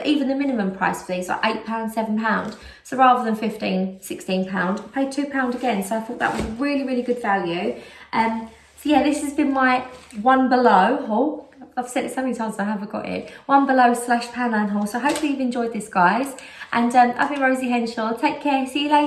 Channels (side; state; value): both; identical; correlation 1.00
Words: even the minimum price for these, like £8, £7. So rather than £15, £16, I paid £2 again. So I thought that was really, really good value. So yeah, this has been my One Below haul. I've said it so many times I haven't got it. One Below / Poundland haul. So hopefully you've enjoyed this, guys. And I've been Rosie Henshaw. Take care. See you